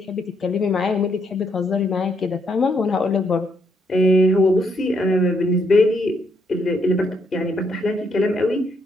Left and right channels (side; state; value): both; normal; correlation 0.74